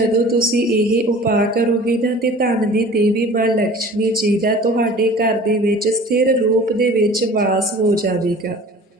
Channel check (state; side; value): normal; both; correlation 0.44